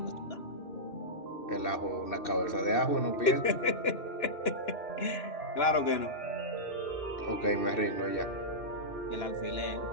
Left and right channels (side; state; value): right; late; 2.6 ms